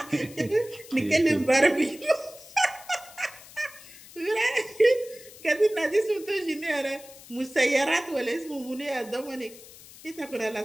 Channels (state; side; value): noise; left; hiss, 19 dB below the sound